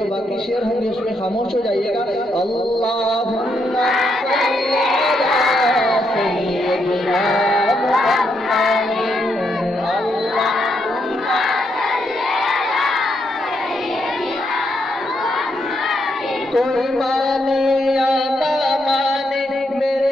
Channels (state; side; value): normal; both; correlation 0.78